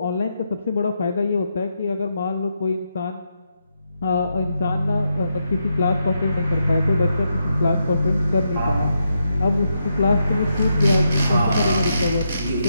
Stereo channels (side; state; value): both; inverted; correlation -0.83